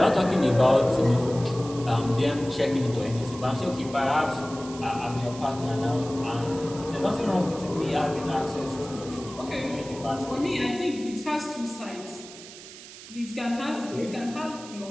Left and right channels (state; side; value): noise; right; hiss, 16 dB below the sound